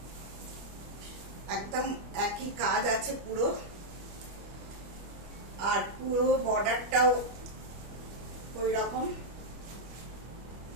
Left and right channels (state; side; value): late; left; 25 ms